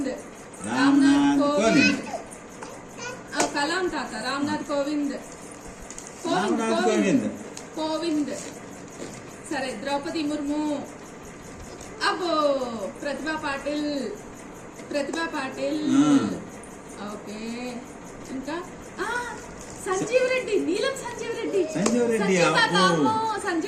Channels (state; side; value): identical; both; correlation 1.00